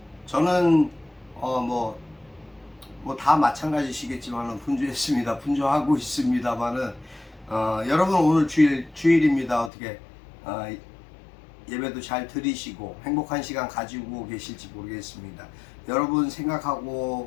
저는 다 마찬가지시겠지만 분주했습니다. 분주하고 있습니다만은 여러분 오늘 주일입니다. 어떻게 예배도 잘 드리시고 행복한 시간 가지고 계실지 모르겠습니다. 여러분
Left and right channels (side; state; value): right; drops out; at 9.7 s